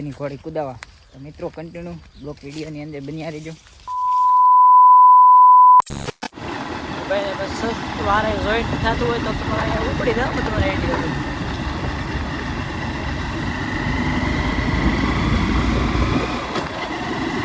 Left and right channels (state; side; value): identical; both; correlation 1.00